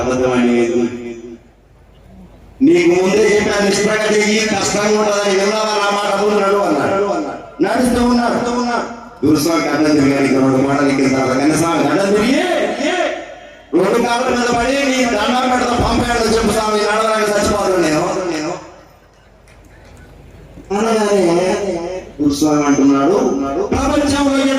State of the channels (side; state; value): both; identical; correlation 1.00